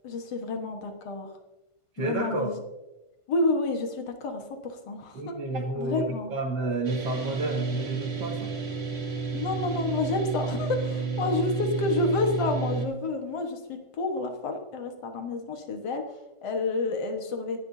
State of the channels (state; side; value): late; right; 1.5 ms